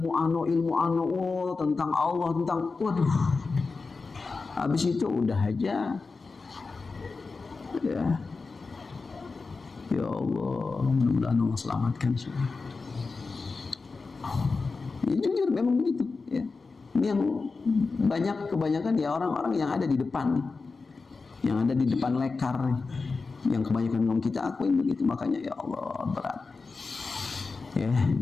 tentang Allah, tentang, waduh, habis itu udah aja, ya. Ya Allah, mudah-mudahan Allah selamatkan semua. Ya, jujur memang begitu, ya. Ini yang kebanyakan ya orang-orang yang ada di depan nih, yang ada di depan lekar nih, yang kebanyakan ngomong, kita akuin begitu. Makanya ya Allah, berat, ya.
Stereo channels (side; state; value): right; quieter; 4.2 dB